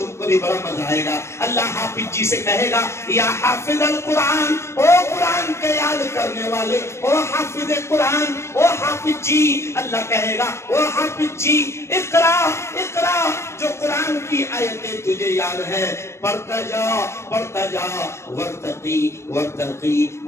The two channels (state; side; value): late; right; 0.13 ms